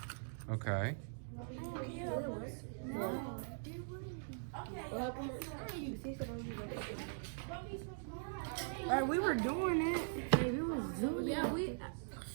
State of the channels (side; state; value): left; silent; digital silence